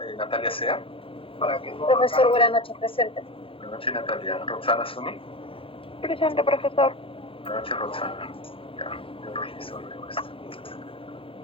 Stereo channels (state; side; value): late; right; 0.26 ms